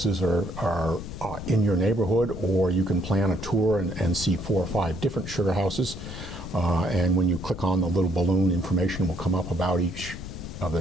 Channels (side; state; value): left; noise; rumble, 10 dB below the sound